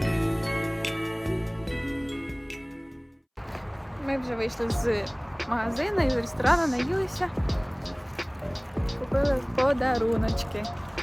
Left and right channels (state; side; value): identical; both; correlation 1.00